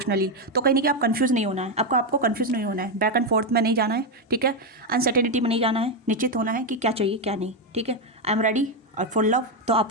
तो कहीं नहीं कि आप कन्फ्यूज़ नहीं होना है, आपको कन्फ्यूज़ नहीं होना है, बैक एंड फोर्थ में नहीं जाना है, ठीक है। अनसर्टेनिटी में नहीं जाना है, निश्चित होना है कि क्या चाहिए क्या नहीं, ठीक है। आई एम रेडी और फुल लव, तो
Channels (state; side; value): normal; both; correlation 0.06